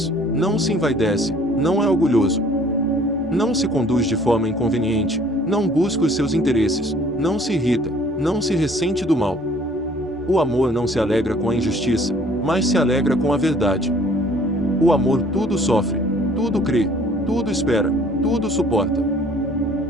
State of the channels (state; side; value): normal; both; correlation 0.55